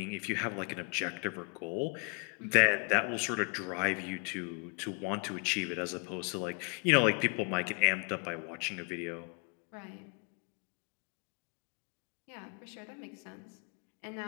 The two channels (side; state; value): right; quieter; 35.2 dB